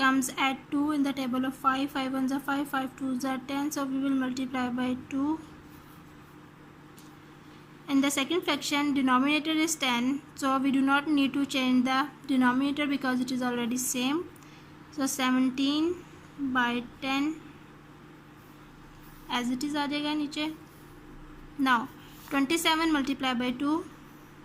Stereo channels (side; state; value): both; identical; correlation 1.00